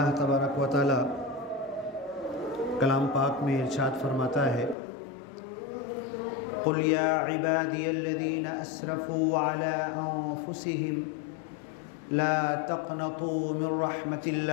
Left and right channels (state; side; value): drops out; right; at 4.8 s